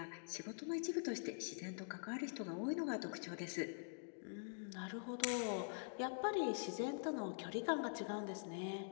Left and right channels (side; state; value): right; silent; digital silence